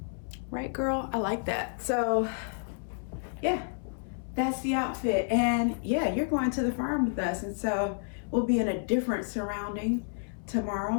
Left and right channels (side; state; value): right; silent; 58 dB below the other